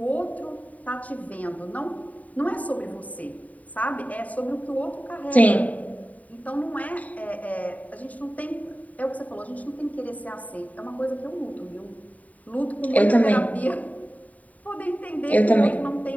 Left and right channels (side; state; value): right; late; 0.071 ms